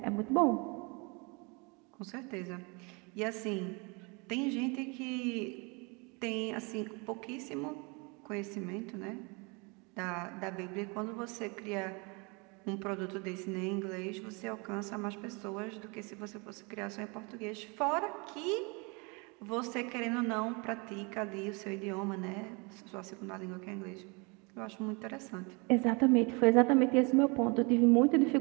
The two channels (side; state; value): left; quieter; 30.2 dB